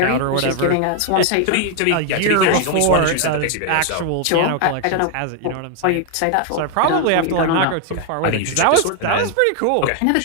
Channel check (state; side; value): different; both; correlation 0.00